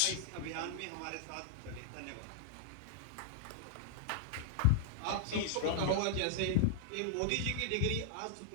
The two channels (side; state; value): both; different; correlation -0.01